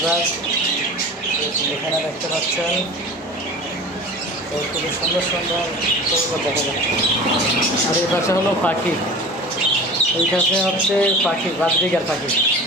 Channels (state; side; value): normal; both; correlation 0.37